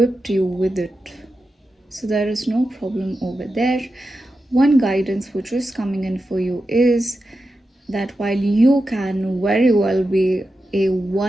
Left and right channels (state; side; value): normal; both; correlation 0.90